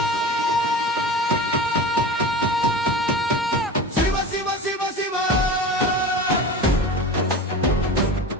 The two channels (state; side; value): normal; both; correlation 0.32